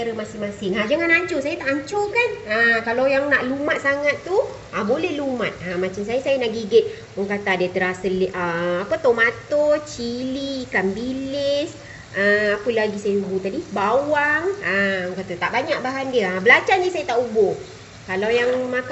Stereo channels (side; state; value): both; identical; correlation 1.00